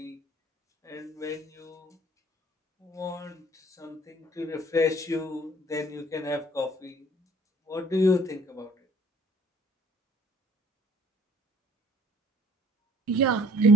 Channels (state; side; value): normal; both; correlation 0.56